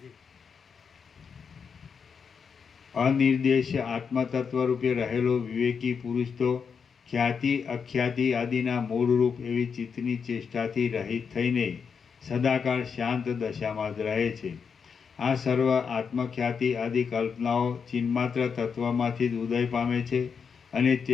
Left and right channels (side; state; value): right; quieter; 6.2 dB